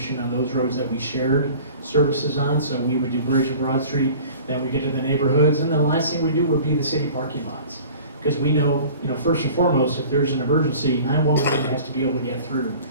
on those roads that we shared services on. So we would do Bridge and Broad Street, then we get to the neighborhoods, and then the last thing we do would be the city parking lots. Because we know, you know, first and foremost, if there's an emergency, 911 has to be able to get through.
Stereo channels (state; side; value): inverted; both; correlation -0.44